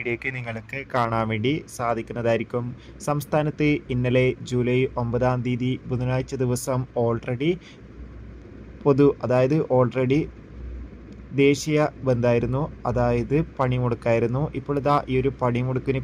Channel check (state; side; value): identical; both; correlation 1.00